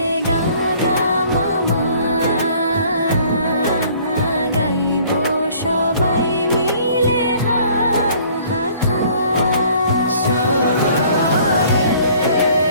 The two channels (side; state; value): both; inverted; correlation -0.56